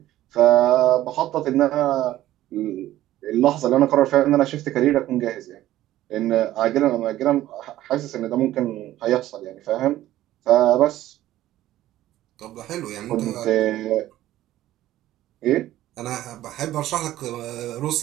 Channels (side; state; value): left; quieter; 14.3 dB